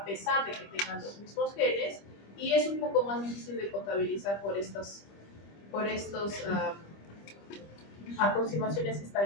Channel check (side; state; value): right; late; 25 ms